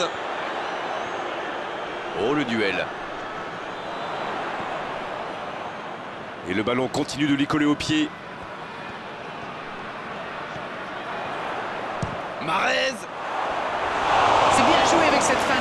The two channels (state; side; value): identical; both; correlation 1.00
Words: Oh, le duel. Et le ballon continue de lui coller au pied. Mahrez. C'est bien joué avec cette